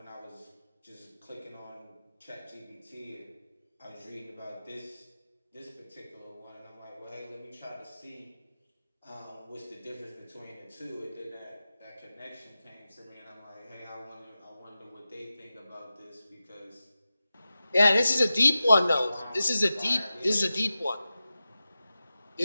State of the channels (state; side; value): inverted; both; correlation -0.94